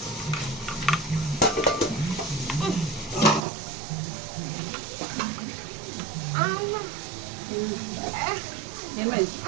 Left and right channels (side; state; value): left; drops out; at 3.5 s